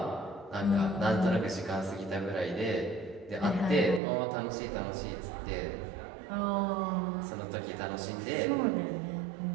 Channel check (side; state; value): left; drops out; at 4.0 s